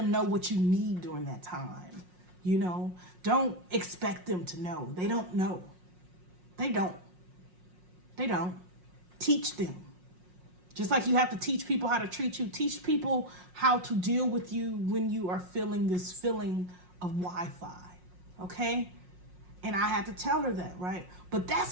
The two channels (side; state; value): left; late; 5.5 ms